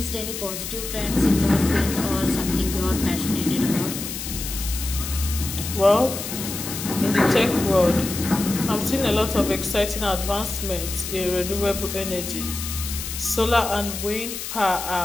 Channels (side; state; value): left; noise; hiss, 7 dB below the sound